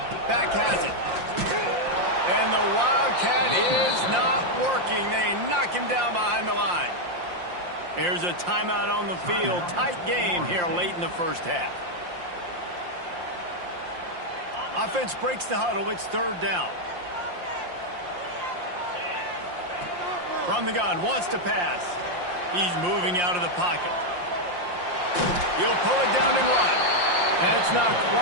Back has it. And the Wildcat is not working. They knock him down behind the line. There's a timeout on the field. Tight game here late in the first half. Offense breaks the huddle. It's third down. From the gun, wants to pass. He's moving out of the pocket. He'll pull it down and run. That's not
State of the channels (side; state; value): left; late; 5.7 ms